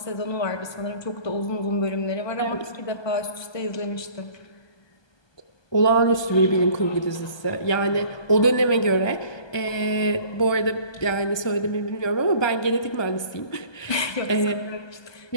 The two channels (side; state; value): right; late; 1.2 ms